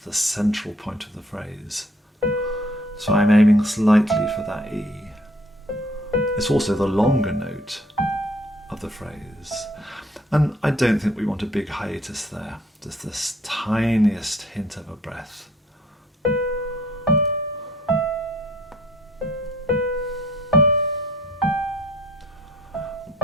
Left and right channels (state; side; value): normal; both; correlation 0.59